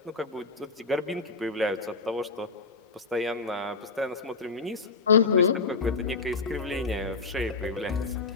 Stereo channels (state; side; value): quieter; right; 4.2 dB